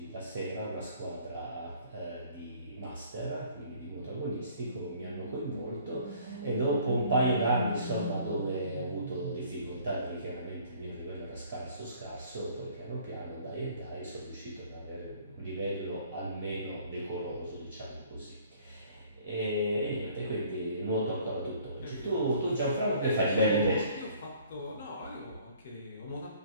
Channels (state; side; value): inverted; both; correlation -0.56